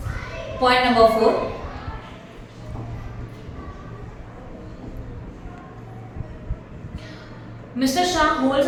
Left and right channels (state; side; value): identical; both; correlation 1.00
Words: Point number 4, Mr. Shah holds